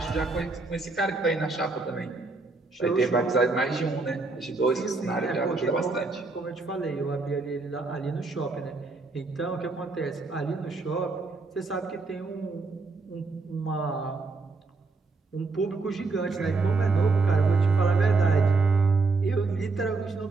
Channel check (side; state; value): left; quieter; 3.8 dB